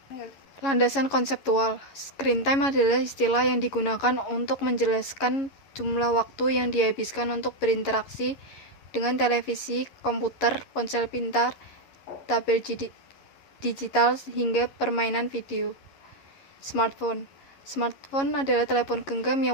Landasan konseptual. Screen time adalah istilah yang digunakan untuk menjelaskan jumlah waktu yang dihabiskan untuk berinteraksi dengan televisi, komputer, ponsel pintar, tabel digital, hingga permainan video. Smartphone. Smartphone adalah telepon genggam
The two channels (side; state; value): right; late; 11 ms